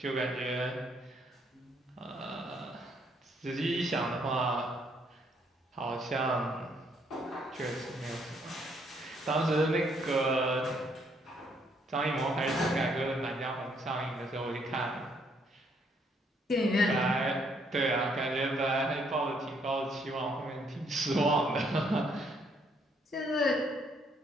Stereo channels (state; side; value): normal; both; correlation 0.69